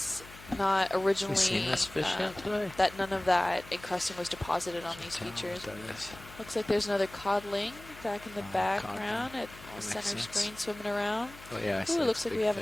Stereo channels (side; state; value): left; noise; hum, 19 dB below the sound